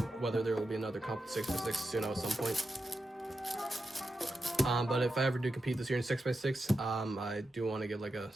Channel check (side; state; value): both; normal; correlation 0.89